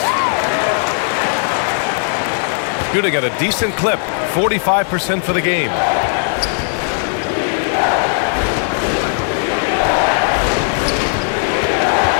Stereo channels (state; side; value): silent; right; 60 dB below the other